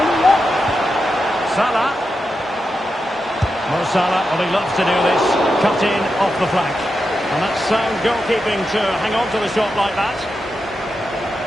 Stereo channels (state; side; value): normal; both; correlation 0.88